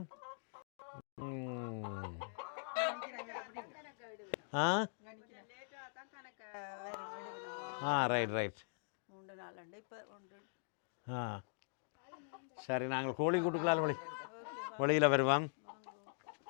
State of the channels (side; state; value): right; silent; digital silence